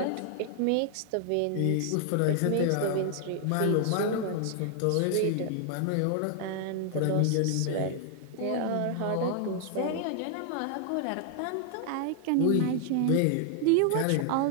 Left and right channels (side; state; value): both; different; correlation 0.00